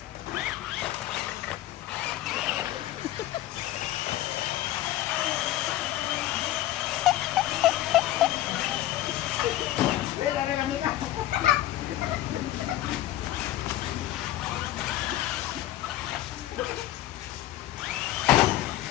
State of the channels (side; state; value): right; quieter; 14.5 dB